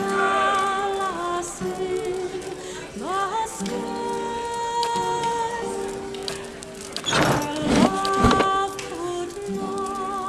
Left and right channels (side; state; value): both; identical; correlation 1.00